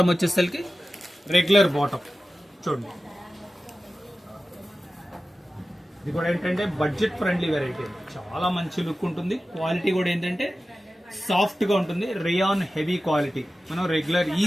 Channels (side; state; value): both; normal; correlation 0.94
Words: వచ్చేసరికి రెగ్యులర్ బాటమ్ చూడండి. ఇది కూడా ఏంటంటే బడ్జెట్ ఫ్రెండ్లీ వెరైటీ, చాలా మంచి లుక్ ఉంటుంది. క్వాలిటీ కూడా ఏంటంటే సాఫ్ట్ గా ఉంటుంది, రేయాన్ హెవీ క్వాలిటీ. మనం రెగ్యులర్